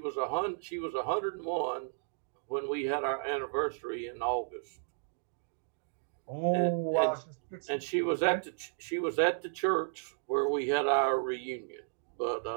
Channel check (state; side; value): silent; left; digital silence